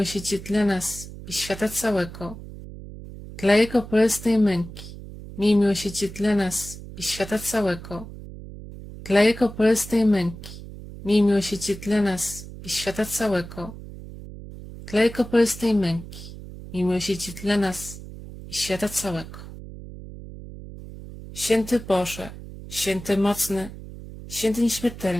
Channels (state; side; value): noise; right; hum, 13 dB below the sound